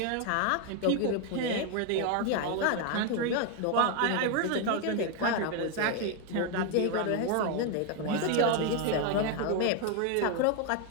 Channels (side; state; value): both; different; correlation 0.01